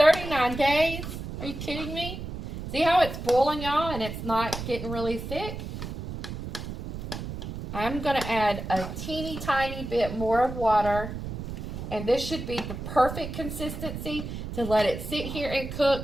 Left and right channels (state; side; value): noise; right; rumble, 7 dB below the sound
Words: days? Are you kidding me? See how it's boiling, y'all, and it's not getting really thick? I'm going to add a teeny tiny bit more of water, and this should be the perfect consistency to let it sit here and